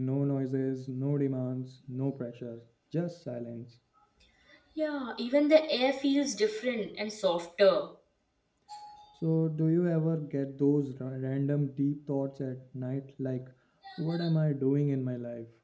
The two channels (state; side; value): identical; both; correlation 1.00